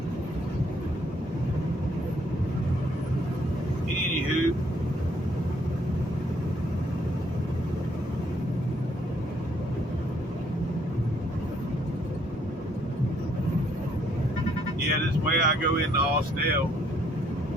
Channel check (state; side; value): normal; both; correlation 0.68